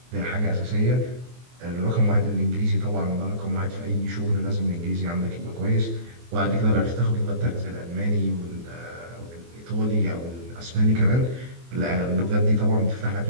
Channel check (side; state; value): left; late; 24 ms